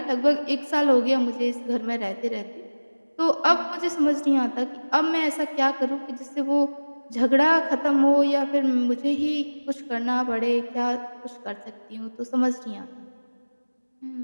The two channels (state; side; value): inverted; both; correlation -1.00